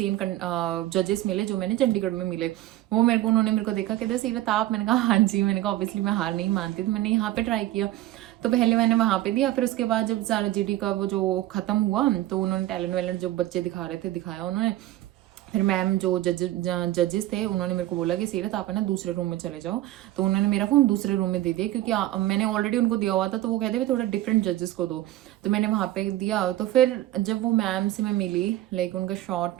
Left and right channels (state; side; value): quieter; left; 15.1 dB